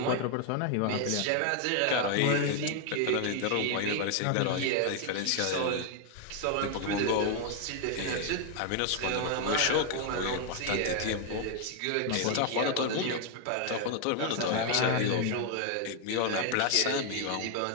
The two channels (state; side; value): different; both; correlation 0.00